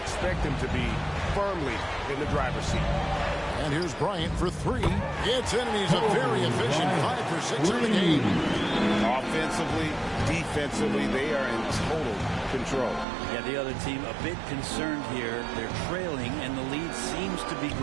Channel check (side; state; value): left; drops out; at 13.1 s